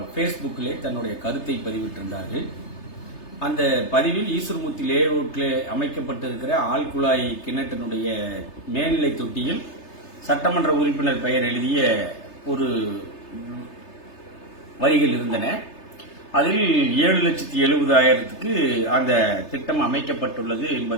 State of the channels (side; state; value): right; late; 3.3 ms